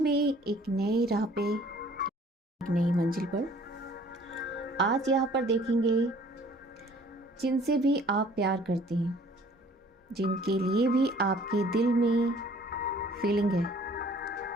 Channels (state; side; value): normal; both; correlation 0.54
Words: में एक नई राह पे, एक नई मंजिल पर। आज यहाँ पर देखेंगे जिनसे भी आप प्यार करते हैं, जिनके लिए भी आपके दिल में फीलिंग है,